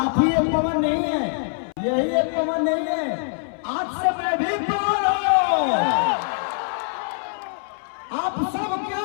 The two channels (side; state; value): right; silent; 63 dB below the other